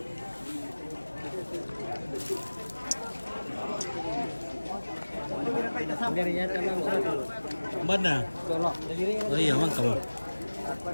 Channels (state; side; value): inverted; both; correlation -1.00